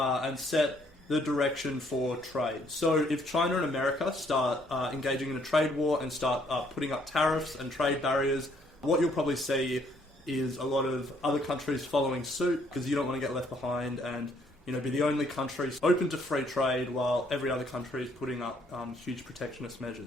set the direction for trade. So if China and America start engaging in a trade war and start putting up tariffs and trade barriers, what you'll probably see is a lot of other countries following suit, because you don't want to get left behind and be the only country open to free trade while every other country is putting up huge protectionist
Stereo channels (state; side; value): normal; both; correlation 0.66